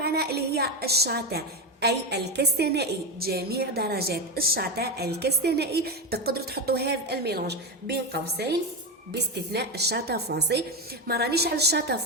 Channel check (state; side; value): normal; both; correlation 0.12